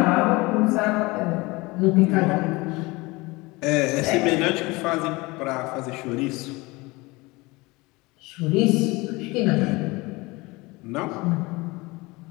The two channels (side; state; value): right; quieter; 23.3 dB